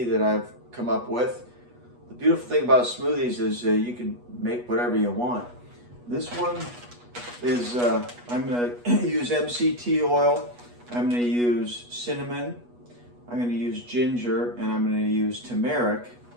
that I've come up with. The beautiful thing about smoothies is you can make whatever you want. This one is, I'm going to use MCT oil, I'm going to use cinnamon, I'm going to use ginger, and I'm going to use turmeric.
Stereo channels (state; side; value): late; left; 8.2 ms